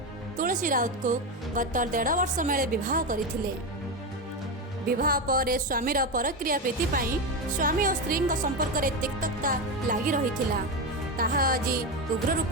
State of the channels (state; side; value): normal; both; correlation 0.14